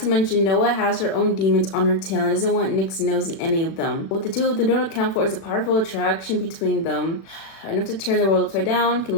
mention Noah has her own demons on her tail and doesn't want Nick's nose in any of them. What the two of them don't account for is a powerful attraction between them. Enough to turn the world upside down, can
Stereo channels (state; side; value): late; right; 37 ms